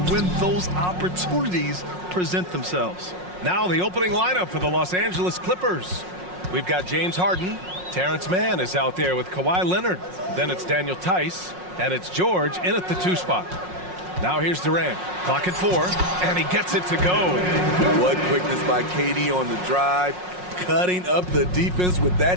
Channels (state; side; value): late; left; 5.5 ms